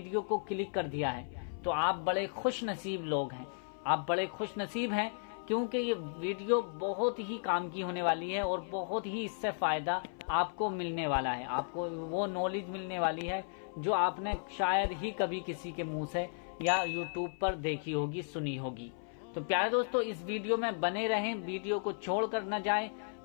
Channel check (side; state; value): right; silent; 55 dB below the other